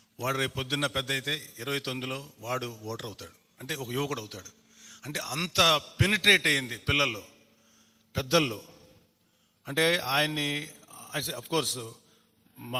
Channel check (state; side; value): identical; both; correlation 1.00